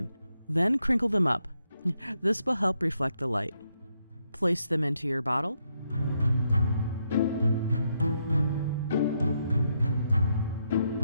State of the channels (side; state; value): both; inverted; correlation -0.79